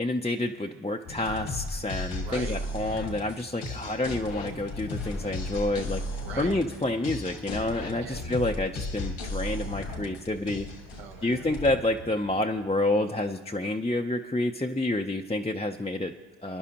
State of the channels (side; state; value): both; normal; correlation 0.59